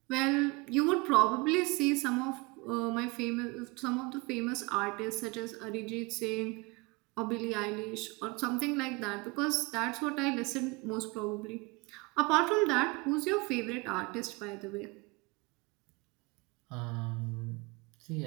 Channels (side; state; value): left; quieter; 25.8 dB